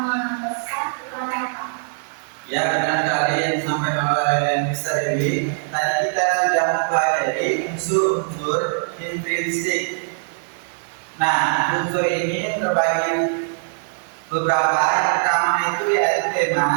pesan, apa? Ya, benar sekali yang disampaikan oleh Mr. Dewi. Tadi kita sudah mempelajari unsur-unsur intrinsik. Nah, unsur ini terbagi beberapa. Yang pertama itu yaitu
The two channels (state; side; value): silent; left; digital silence